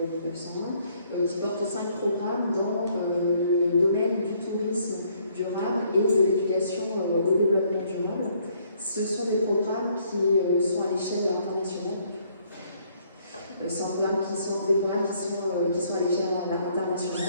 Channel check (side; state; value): both; inverted; correlation -0.66